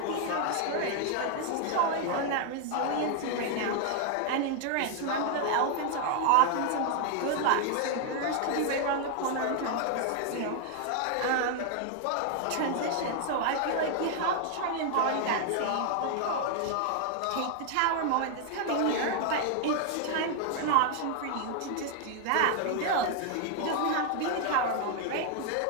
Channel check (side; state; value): both; different; correlation 0.00